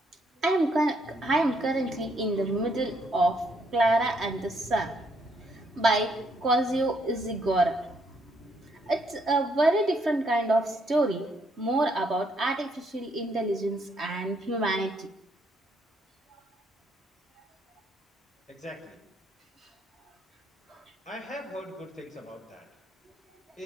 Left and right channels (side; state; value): both; normal; correlation 0.72